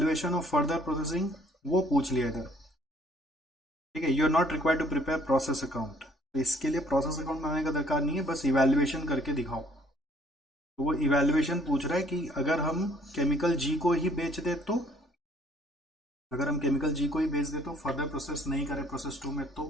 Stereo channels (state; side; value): normal; both; correlation 0.61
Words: ऑफ फर्दर प्रोसेसिंग, वो पूछ लिया इधर। ठीक है, you are not required to prepare process account, तो इसके लिए प्रोसेस अकाउंट बनाने का दरकार नहीं है, बस इवैल्यूएशन करके दिखाओ। तो वो इवैल्यूएशन पूछ रहा है कि अगर हम केमिकल G को ही बेच दे तो अगर हम केमिकल जी को ही भेज दे तो फर्दर प्रोसेस नहीं करे प्रोसेस 2 में तो